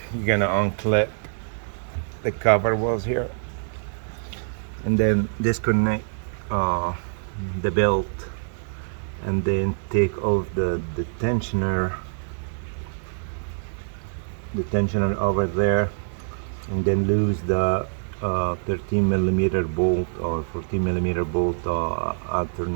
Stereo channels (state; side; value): silent; left; digital silence